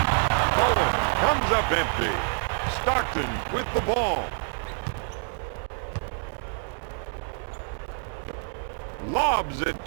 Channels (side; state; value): left; silent; 60 dB below the other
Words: Bowen comes up empty. Stockton with the ball. Lobs it